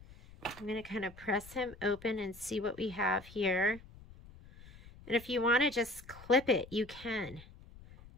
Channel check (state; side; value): noise; left; rumble, 20 dB below the sound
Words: I'm going to kind of press him open and see what we have here. And if you want to just clip it, you can.